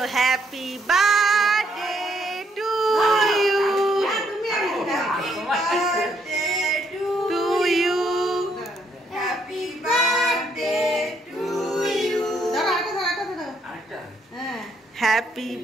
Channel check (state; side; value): normal; both; correlation 0.71